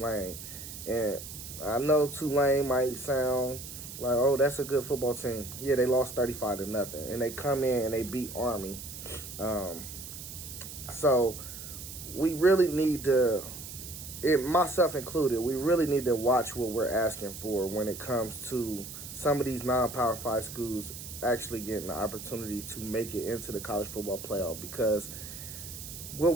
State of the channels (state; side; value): noise; right; hiss, 11 dB below the sound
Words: And I know Tulane might sound like, oh, that's a good football team. Yeah, they lost 35-0, and they come in and they beat Army. So we really need to, myself included, we really need to watch what we're asking for when it comes to some of these non-Power 5 schools actually getting the opportunity to make it into the college football playoff. Because what